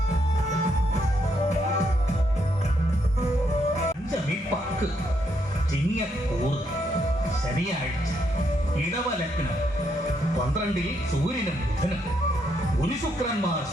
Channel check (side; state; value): both; normal; correlation 0.76